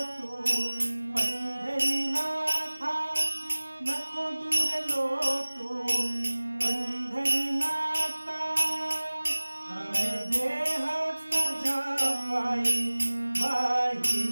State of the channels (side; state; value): both; inverted; correlation -1.00